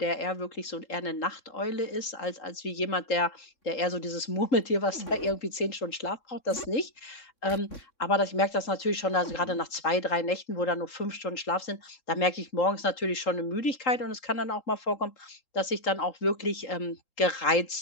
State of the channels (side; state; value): right; late; 3.8 ms